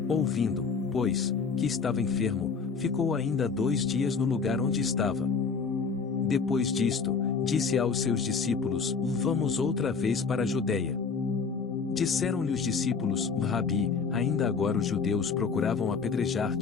Ouvindo, pois, que estava enfermo, ficou ainda 2 dias no lugar onde estava. Depois disto, disse aos seus discípulos, vamos outra vez para a Judeia. Disseram-lhe os discípulos, Rabi, ainda agora os judeus procuravam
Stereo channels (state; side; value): quieter; right; 5.2 dB